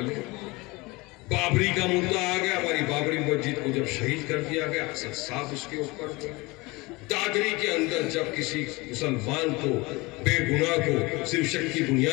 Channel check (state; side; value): quieter; right; 23.8 dB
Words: बाबरी का मुद्दा आ गया, हमारी बाबरी मस्जिद को जब शहीद कर दिया गया, असद साहब उसके ऊपर, दादरी के अंदर जब किसी मुसलमान को बेगुनाह को सिर्फ शक की